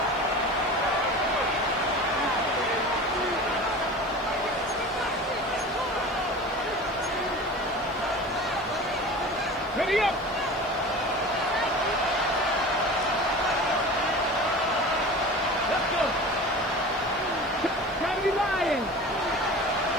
Ready up! Let's go! Try to be lying!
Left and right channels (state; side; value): noise; right; hiss, 29 dB below the sound